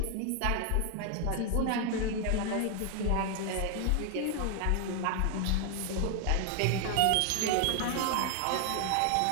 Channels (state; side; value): different; both; correlation 0.01